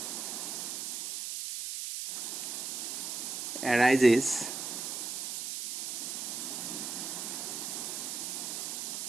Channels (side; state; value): right; noise; hiss, 4 dB below the sound